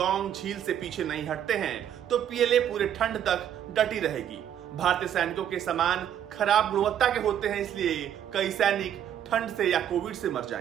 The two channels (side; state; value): left; quieter; 10.0 dB